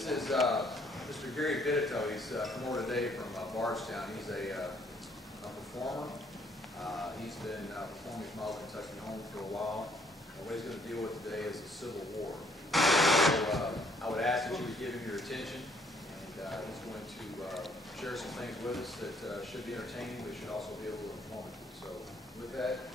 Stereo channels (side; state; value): both; normal; correlation 0.65